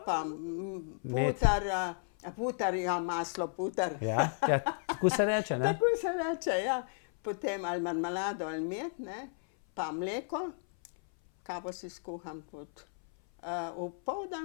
pa putar, ja, maslo, putar. Ja, tako se reče, ne? Tako se reče, ja. Potem ali marmelado ali med, ne, pa mleko, kavo si skuham tudi.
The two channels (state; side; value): silent; right; 56 dB below the other